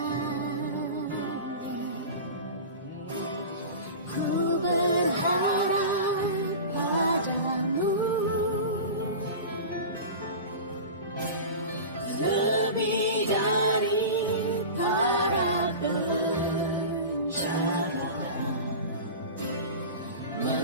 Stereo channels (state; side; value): inverted; both; correlation -0.31